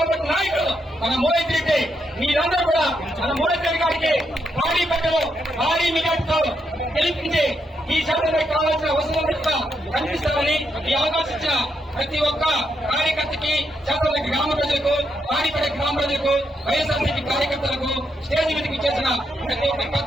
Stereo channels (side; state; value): both; normal; correlation 0.80